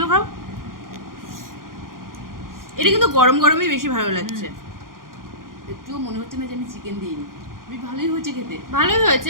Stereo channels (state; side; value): late; left; 0.91 ms